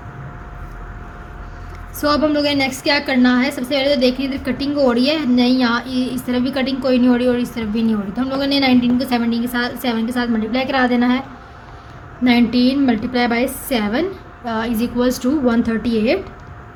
सो अब हम लोगों ने नेक्स्ट क्या करना है, सबसे पहले तो देखिए इधर कटिंग हो रही है, नहीं यहाँ इस तरफ भी कटिंग कोई नहीं हो रही और इस तरफ भी नहीं हो रही। तो हम लोगों ने 19 को 17 के साथ 7 के साथ मल्टीप्लाई करा देना है। 19 multiply by 7 is equals to 138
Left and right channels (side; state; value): both; identical; correlation 1.00